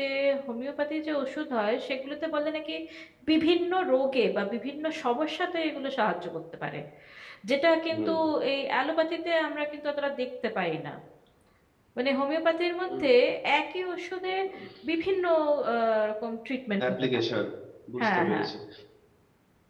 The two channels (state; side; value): identical; both; correlation 1.00